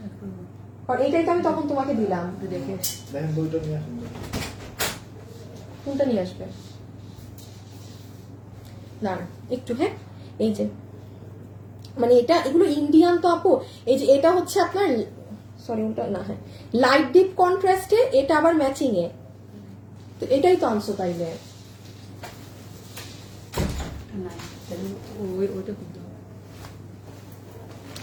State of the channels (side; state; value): both; identical; correlation 1.00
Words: আর এইটাই তো আমি তখন তোমাকে দিলাম। কোনটা নিয়ে আসবে না একটু, হ্যাঁ এই যে মানে এটা, এগুলো ইন্ডিয়ান তো আপু। এই যে এটা হচ্ছে আপনার, সরি ওটা না, হ্যাঁ লাইট ডিপ কন্ট্রাস্টে, এটা আবার ম্যাচিং এ, তো এটাই তো আনছো তাইলে।